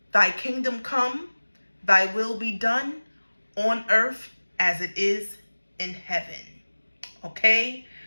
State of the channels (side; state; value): both; inverted; correlation -1.00